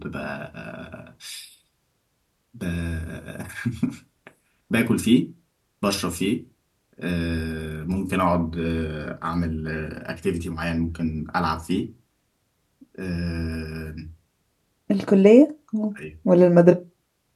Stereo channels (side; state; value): both; identical; correlation 1.00